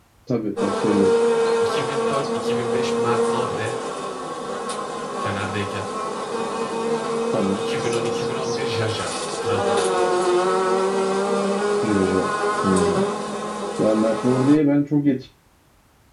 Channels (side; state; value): both; identical; correlation 1.00